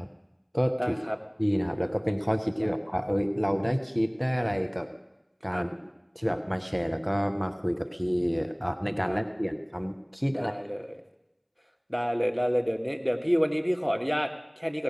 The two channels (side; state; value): both; identical; correlation 1.00